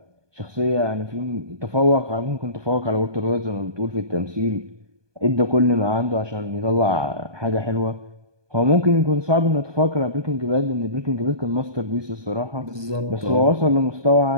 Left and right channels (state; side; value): late; left; 1.2 ms